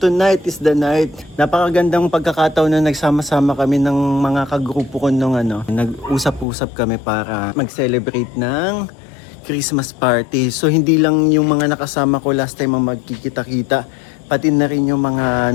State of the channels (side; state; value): right; drops out; at 6.5 s